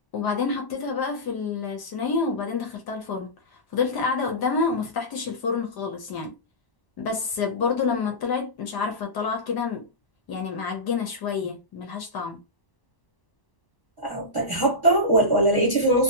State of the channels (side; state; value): right; late; 1.0 ms